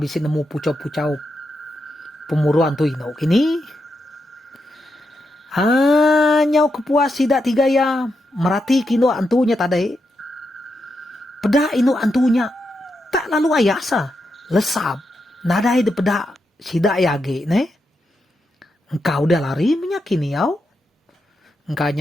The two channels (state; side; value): normal; both; correlation 0.84